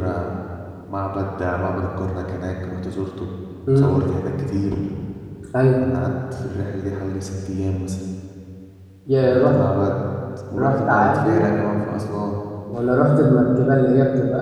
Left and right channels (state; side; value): identical; both; correlation 1.00